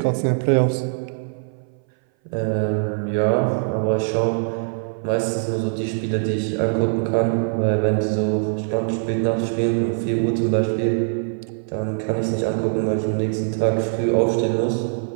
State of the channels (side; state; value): left; silent; 59 dB below the other